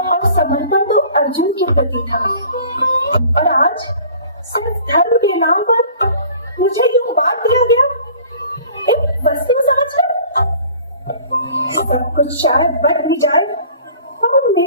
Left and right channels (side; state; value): both; inverted; correlation -0.48